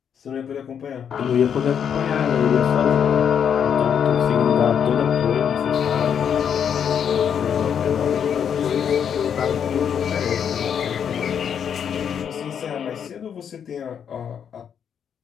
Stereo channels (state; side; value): quieter; right; 8.0 dB